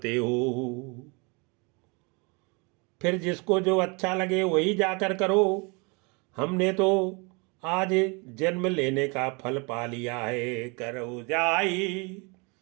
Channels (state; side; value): quieter; left; 30.6 dB